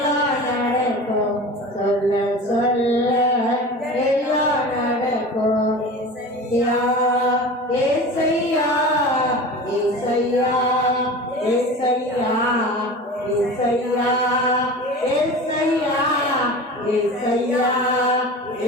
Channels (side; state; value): both; normal; correlation 0.34